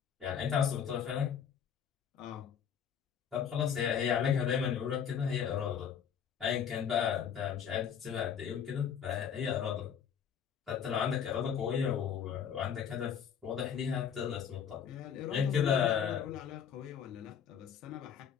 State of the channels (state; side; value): quieter; right; 8.0 dB